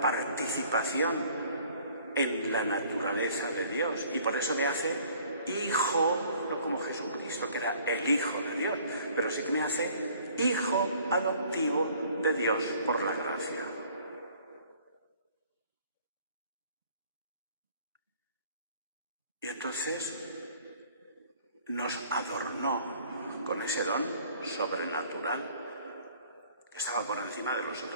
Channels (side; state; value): both; inverted; correlation -0.56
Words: participación en la naturaleza de Dios y por eso me hace hijo, no como Jesucristo, que era el Hijo de Dios, pero sí que me hace hijo adoptivo de Dios por la gracia. Y entonces nos adornó con ese don sobrenatural que estaba por encima de los